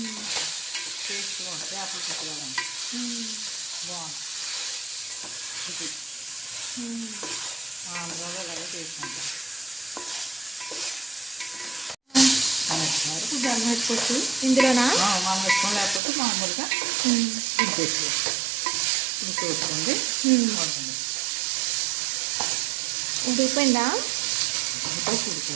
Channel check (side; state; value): left; drops out; at 16.0 s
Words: వేసుకోవాలి. చేపల పులుసులాగా ఉంటుంది. బాగుంటుంది. ఆంధ్రాలో అలాగే చేసుకుంటాం. జల్లు పెట్టుకోవచ్చు ఇందులోనా? మనం పెట్టుకోం, లేకపోతే మామూలుగా ఇంకేసుకోవచ్చు. ఇంకేసుకోండి. ఉడికిపోయిందా? ఉడికిపోవచ్చు.